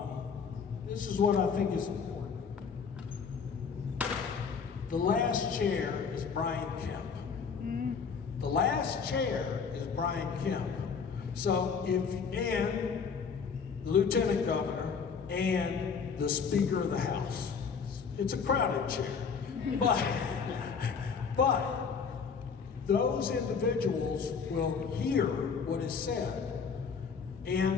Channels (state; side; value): quieter; right; 5.9 dB